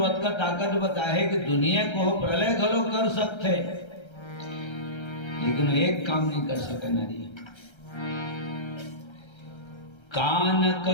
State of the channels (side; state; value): right; late; 1.3 ms